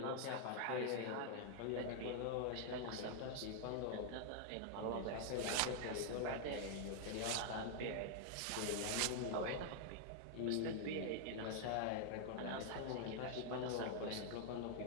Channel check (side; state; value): both; different; correlation 0.00